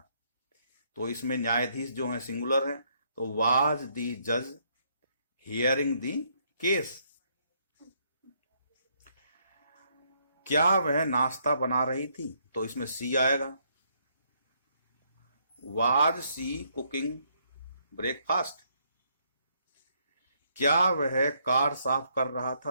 तो इसमें न्यायाधीश जो है सिंगुलर है, तो वाज दी जज हियरिंग दी केस। क्या वह नाश्ता बना रही थी, तो इसमें सी आएगा, वाज सी कुकिंग ब्रेकफास्ट। क्या वह कार साफ कर रहा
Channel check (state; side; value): inverted; both; correlation -0.72